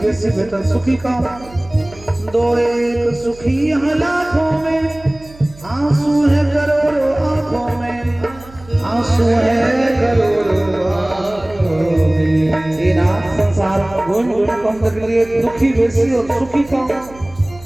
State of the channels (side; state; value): right; noise; hum, 21 dB below the sound